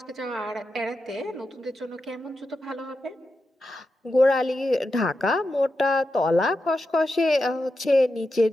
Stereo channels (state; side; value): normal; both; correlation 0.89